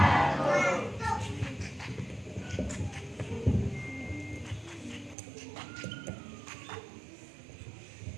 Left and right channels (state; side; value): drops out; left; at 5.2 s